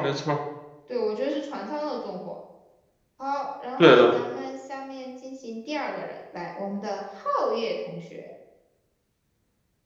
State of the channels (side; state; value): both; identical; correlation 1.00